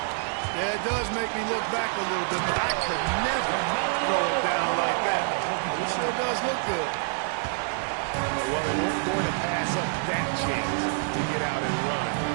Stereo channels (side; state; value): left; silent; 60 dB below the other